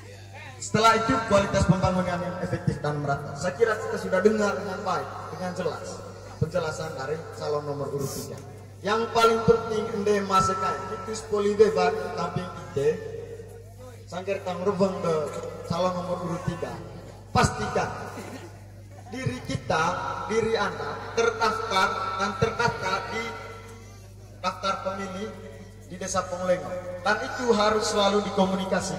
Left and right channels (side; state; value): both; identical; correlation 1.00